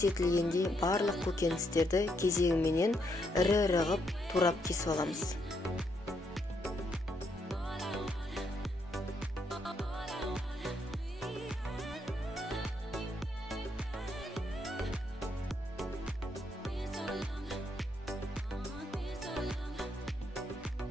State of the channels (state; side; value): normal; both; correlation 0.76